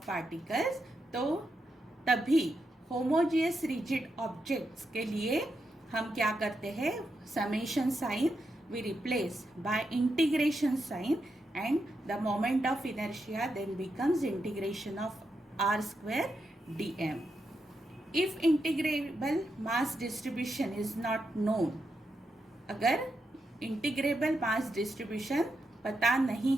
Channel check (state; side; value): normal; both; correlation 0.85